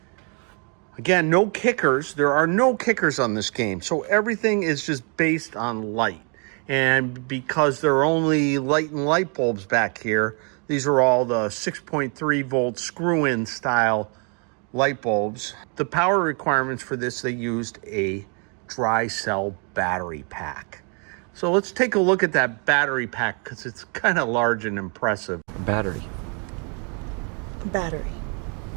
Again, no kickers. There are no kickers on this game. So everything is just based on light. And because there are only light and light bulbs back here, these are all the 6.3 volt screw-in style light bulbs. The power requirements for this, they used a dry cell battery pack. So let's take a look at that battery pack because it's kind of large and impressive. A battery. A battery.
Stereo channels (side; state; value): left; quieter; 37.6 dB